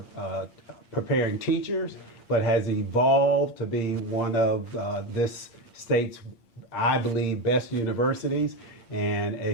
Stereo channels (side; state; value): right; late; 8.7 ms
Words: preparing teachers, but has evolved to be one of this state's, I believe, best universities, and